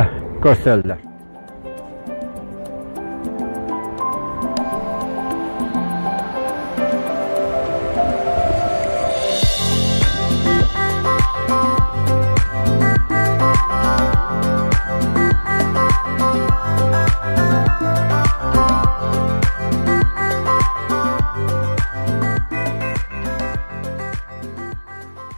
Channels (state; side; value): inverted; both; correlation -1.00